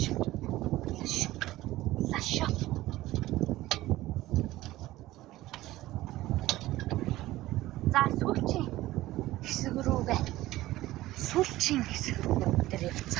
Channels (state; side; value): quieter; left; 16.6 dB